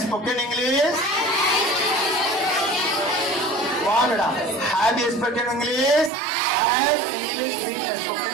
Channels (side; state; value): left; drops out; at 6.1 s